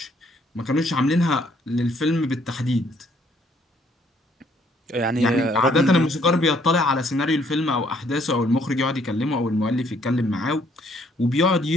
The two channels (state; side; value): normal; both; correlation 0.66